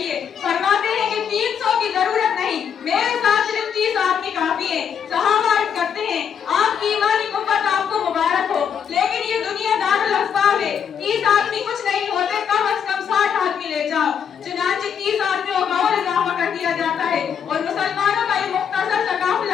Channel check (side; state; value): right; quieter; 7.8 dB